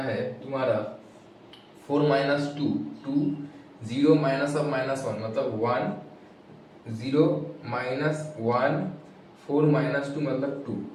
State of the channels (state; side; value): identical; both; correlation 1.00